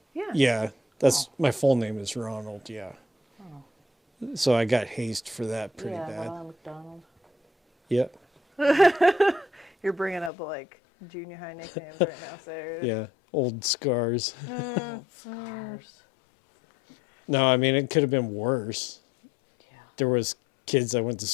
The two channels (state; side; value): drops out; right; at 10.3 s